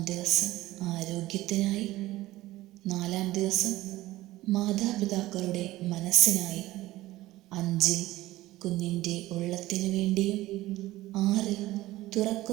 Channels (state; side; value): quieter; left; 17.0 dB